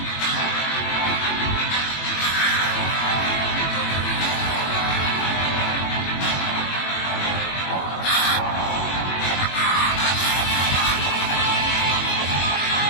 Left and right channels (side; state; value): right; late; 21 ms